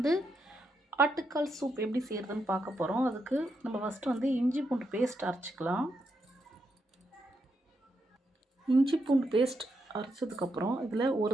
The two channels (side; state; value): both; normal; correlation 0.82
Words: ஆட்டுக்கால் சூப் எப்படி செய்கிறதுன்னு பார்க்க போகிறோம். அதுக்கு நம்ம ஃபஸ்ட்டு இஞ்சி பூண்டு பேஸ்ட் அரைச்சிக்கலாம். இஞ்சி பூண்டு பேஸ்ட் அரைச்சதுக்கப்புறம் இதில் ஒரு